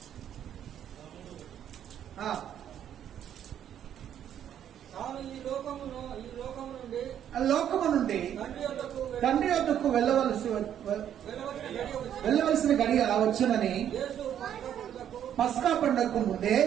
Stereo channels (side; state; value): left; quieter; 9.9 dB